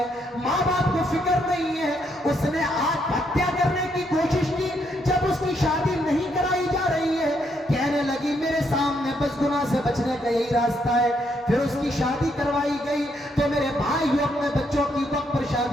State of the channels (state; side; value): normal; both; correlation 0.75